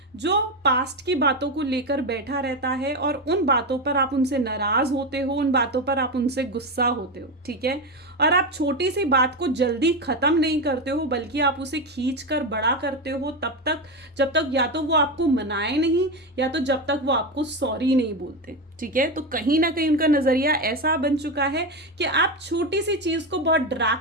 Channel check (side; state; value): both; normal; correlation 0.15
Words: जो पास्ट की बातों को लेकर बैठा रहता है और उन बातों पर आप उनसे नाराज होते हो, उन बातों पर आप उनसे गुस्सा होते हो। ठीक है, और आप छोटी सी बात को जल्दी ख़त्म नहीं करते हो बल्कि आप उसे खींच कर बड़ा करते हो तब तक जब तक या तो वो आपको मनाए नहीं या तो जब तक वो आपको सॉरी नहीं बोलते। ठीक है, तो कहीं ना कहीं उनका नज़रिया ऐसा बन चुका है कि आप छोटी सी चीज़ को बहुत